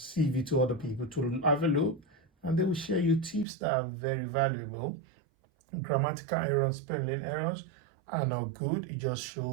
to other people to have a look, and they will share you tips that are very valuable. Grammatical errors, spelling errors are not good. It just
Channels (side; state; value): left; drops out; at 3.5 s